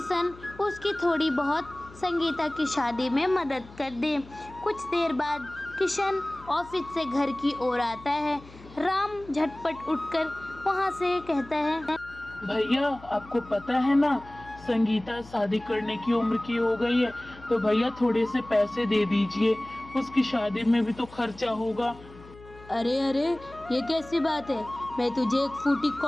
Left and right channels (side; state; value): left; noise; hum, 20 dB below the sound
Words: उसकी थोड़ी बहुत संगीता की शादी में मदद कर दे। कुछ देर बाद किशन ऑफिस से घर की ओर आता है। राम झटपट उठकर वहाँ से कहता है, भैया आपको पता है ना, संगीता शादी करने की उम्र की हो गई है, तो भैया थोड़े से पैसे दे दीजिए, उसकी शादी में भी तो खर्चा होगा। अरे अरे, ये कैसी बात है? मैं तुझे एक फूटी